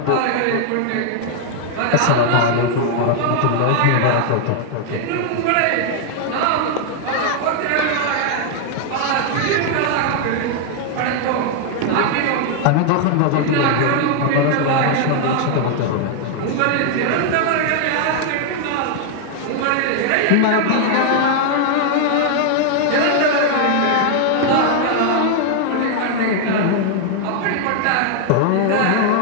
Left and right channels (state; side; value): different; both; correlation 0.00